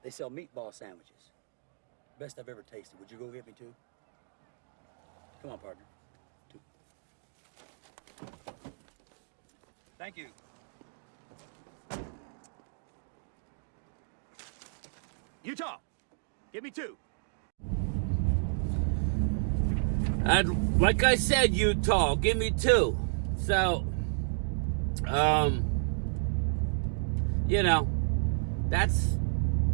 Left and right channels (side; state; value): left; silent; digital silence